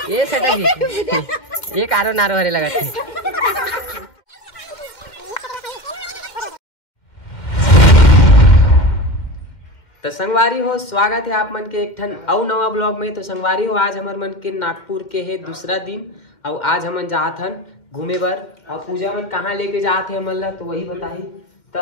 ये सटा जी ये कारो नारो हरे लगा थे। तो संगवारी हो स्वागत है आप मन के एक ठन अउ नवा ब्लॉग में। तो संगवारी हो आज हमार मन के नागपुर के है दूसरा दिन और आज हमन जात हन घूमे बर और पूजा मन कहाँ लेके जात है हमन ला तो वही बताही। तो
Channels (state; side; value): late; right; 2.1 ms